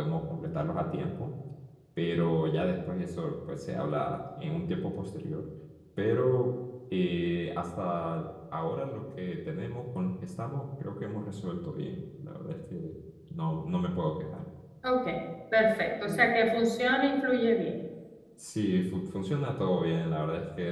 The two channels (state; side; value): identical; both; correlation 1.00